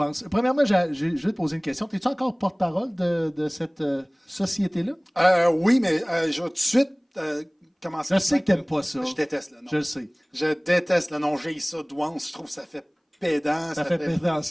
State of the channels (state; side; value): identical; both; correlation 1.00